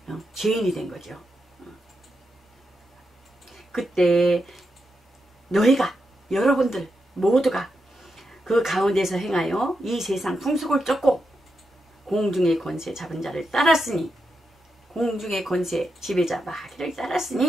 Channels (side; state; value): both; normal; correlation 0.86